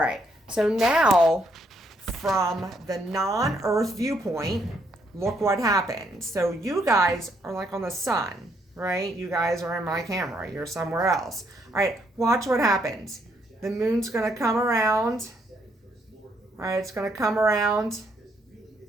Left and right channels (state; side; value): normal; both; correlation 0.72